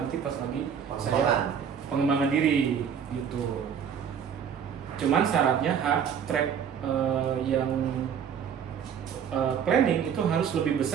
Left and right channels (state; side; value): quieter; left; 7.8 dB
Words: pas lagi saya pengembangan diri gitu. Cuman syaratnya track yang planning itu harus lebih